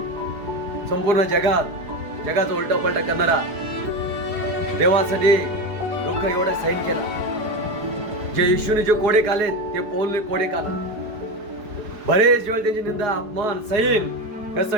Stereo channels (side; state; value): left; late; 4.9 ms